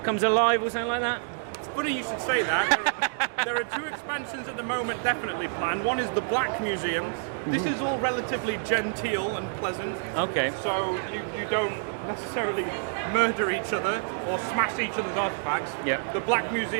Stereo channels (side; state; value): left; silent; digital silence